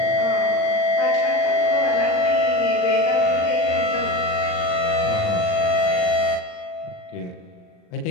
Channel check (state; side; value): late; right; 39 ms